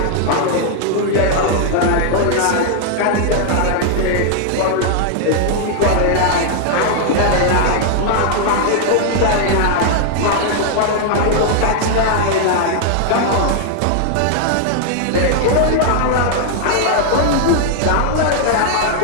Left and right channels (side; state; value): both; different; correlation 0.00